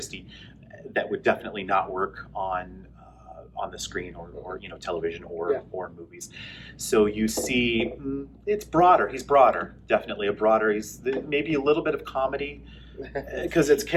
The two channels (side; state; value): both; identical; correlation 1.00